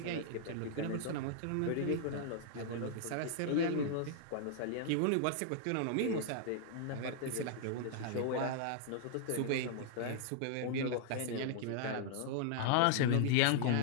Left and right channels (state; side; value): different; both; correlation -0.01